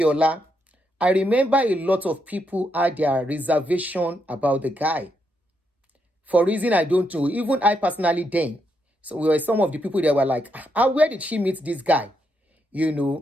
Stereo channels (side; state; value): both; normal; correlation 0.80